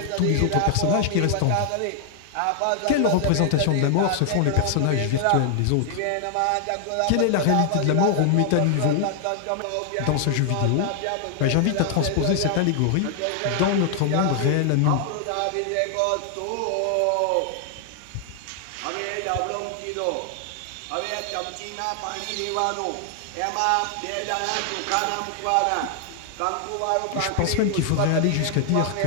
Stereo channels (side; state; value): both; different; correlation 0.00